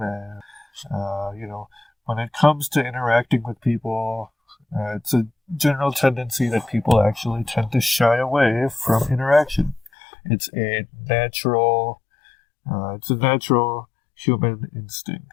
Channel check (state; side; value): drops out; right; at 9.9 s